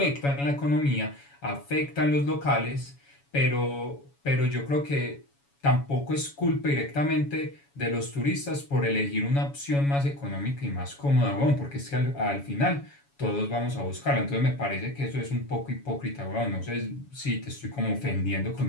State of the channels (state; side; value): late; right; 7.1 ms